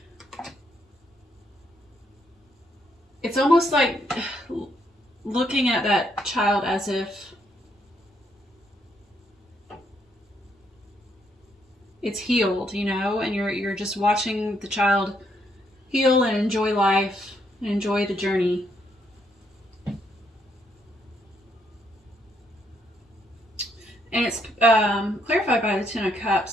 it's almost like looking at that child as if it's healed, and you're just watching the child heal and enjoy life and enjoy the journey. And it's clarified by the Ten of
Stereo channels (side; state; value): both; normal; correlation 0.74